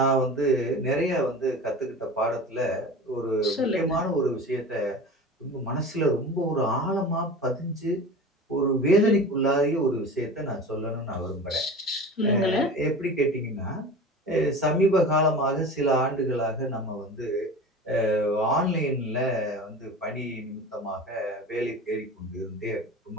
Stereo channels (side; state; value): both; normal; correlation 0.34